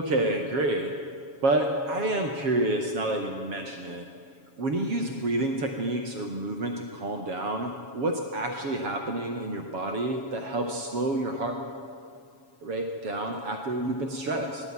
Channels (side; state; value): left; late; 7.2 ms